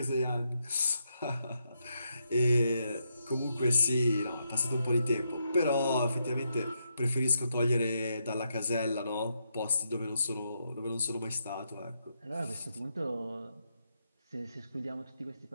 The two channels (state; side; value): inverted; both; correlation -0.81